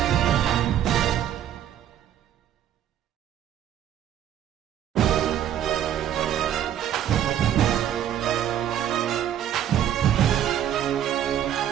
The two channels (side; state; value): left; quieter; 10.6 dB